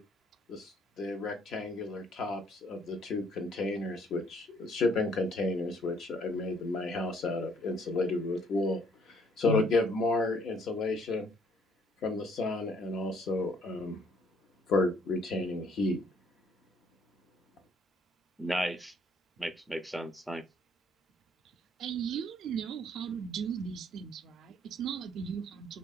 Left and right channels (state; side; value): normal; both; correlation 0.63